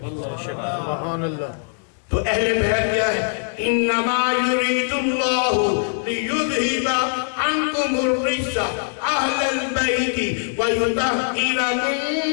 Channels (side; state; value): right; silent; 63 dB below the other